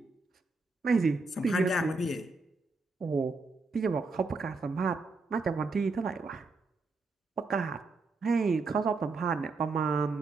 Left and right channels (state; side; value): quieter; left; 3.7 dB